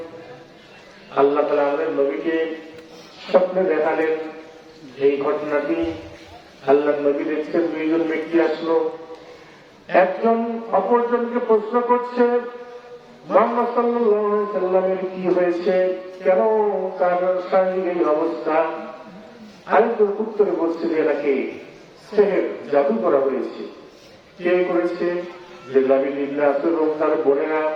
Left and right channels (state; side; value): identical; both; correlation 1.00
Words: আল্লাহ তাআলা আমাদের নবীকে স্বপ্নে দেখালেন এই ঘটনাটি। আল্লাহ নবী দেখছেন দুইজন ব্যক্তি আসলো, একজন অপরজনকে প্রশ্ন করছে, মুহাম্মদ সাল্লাল্লাহু আলাইহি সাল্লামের কি হয়েছে, কেন তার শারীরিক এই অবস্থা? আরেকজন উত্তরে বলছে যে এনাকে সেহের, জাদু করা হয়েছে। কে করেছে? যে লাবিদ ইবনে আসরম তার বোনেরা।